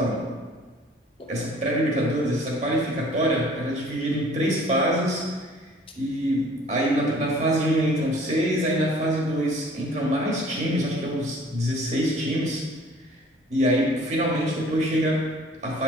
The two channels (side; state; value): both; normal; correlation 0.52